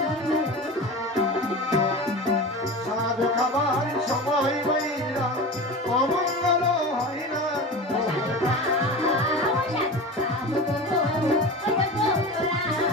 সাধ খাবার সময় বাইরা অমঙ্গল হয় না।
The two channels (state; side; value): normal; both; correlation 0.30